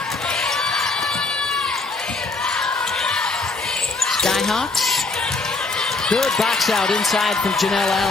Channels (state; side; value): quieter; right; 3.5 dB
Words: Skyhawks. Good box out inside from Janelle